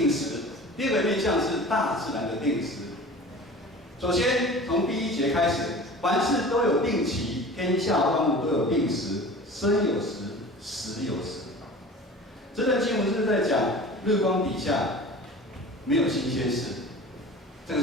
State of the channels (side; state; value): both; normal; correlation 0.39